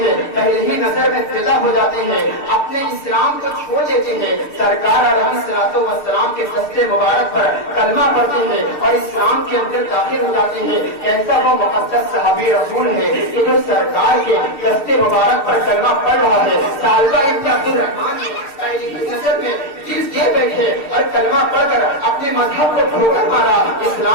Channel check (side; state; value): right; late; 6.6 ms